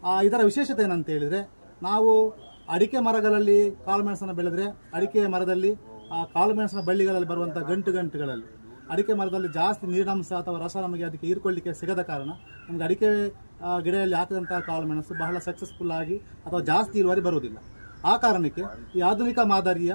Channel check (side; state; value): both; inverted; correlation -1.00